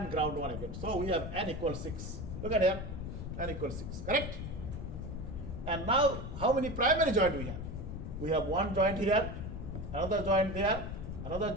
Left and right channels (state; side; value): noise; left; rumble, 6 dB below the sound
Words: ground 1 again. So we have n equals 6. Look at here, n equals 6, correct? And now how many primary joint we have? We have one joint here, another joint there, another